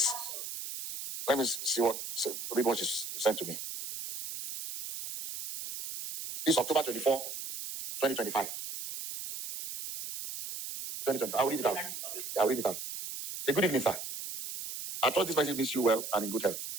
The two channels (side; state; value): right; noise; hiss, 7 dB below the sound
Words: let me read what she sent to me. This is October 24, 2025. 2025. I'll read it out. Say, good evening, sir. I trust this message means you well and in good health.